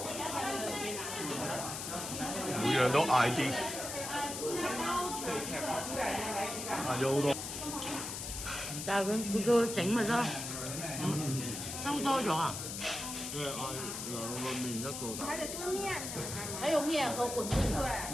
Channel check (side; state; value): left; noise; hiss, 6 dB below the sound